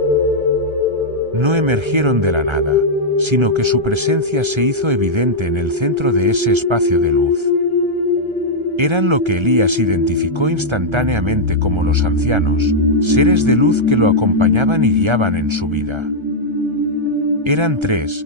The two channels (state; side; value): late; left; 1.3 ms